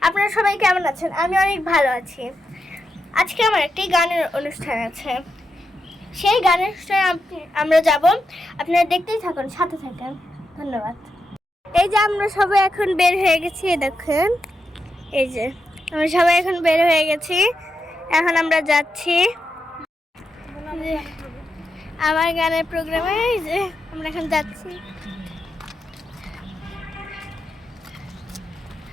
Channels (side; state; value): both; normal; correlation 0.86